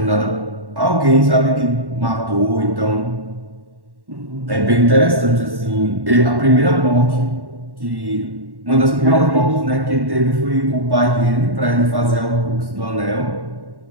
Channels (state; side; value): late; left; 1.1 ms